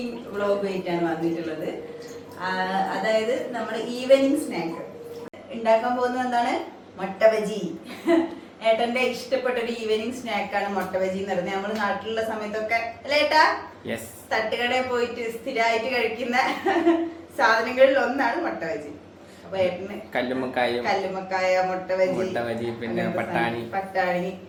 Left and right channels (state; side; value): identical; both; correlation 1.00